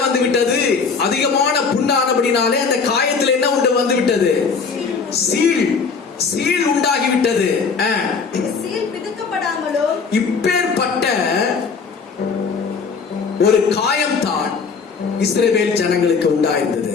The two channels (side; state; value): right; quieter; 5.3 dB